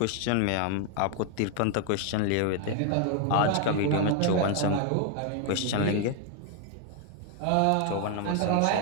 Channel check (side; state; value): both; different; correlation 0.00